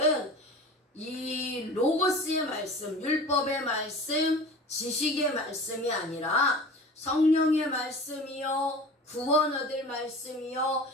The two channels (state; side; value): normal; both; correlation 0.37